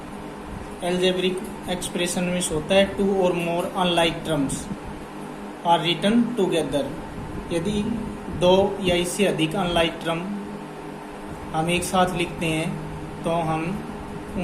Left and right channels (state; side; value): identical; both; correlation 1.00